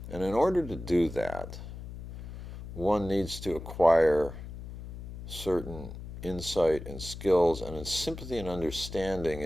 And in order to do that, one needs to acquire certain insight and skills and sympathy and understanding,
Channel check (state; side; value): noise; left; hum, 11 dB below the sound